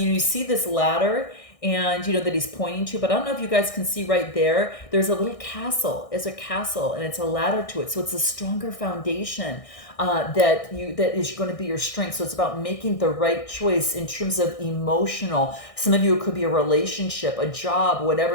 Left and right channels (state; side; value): late; right; 1.6 ms